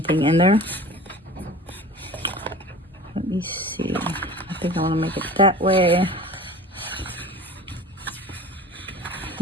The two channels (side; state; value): both; normal; correlation 0.39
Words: in there. Let me see, I think I want to make it that way.